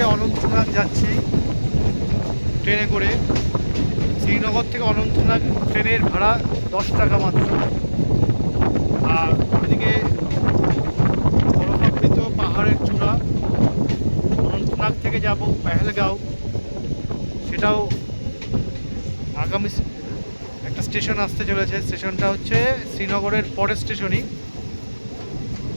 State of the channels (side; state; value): both; inverted; correlation -1.00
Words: অনন্তনাগ যাচ্ছি ট্রেনে করে। শ্রীনগর থেকে অনন্তনাগ ট্রেনের ভাড়া 10 টাকা মাত্র। আর এদিকে বরফাবৃত পাহাড়ের চূড়া অনন্তনাগ থেকে যাব পেহেলগাঁও, সেটাও আগামী একটা স্টেশন আসতে চলেছে। স্টেশনটা হচ্ছে শ্রীনগরের পরের স্টেশনই,